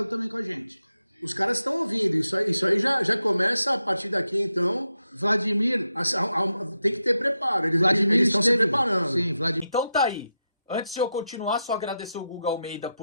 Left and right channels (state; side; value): inverted; both; correlation -0.87